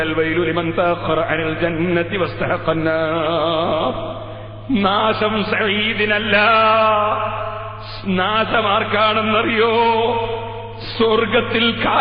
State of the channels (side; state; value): both; identical; correlation 1.00